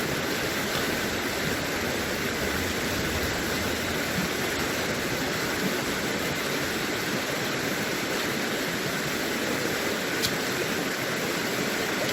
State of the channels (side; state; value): both; identical; correlation 1.00